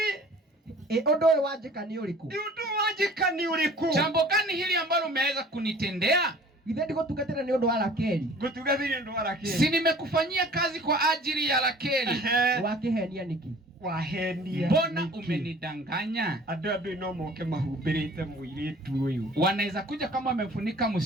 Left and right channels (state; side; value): normal; both; correlation 0.49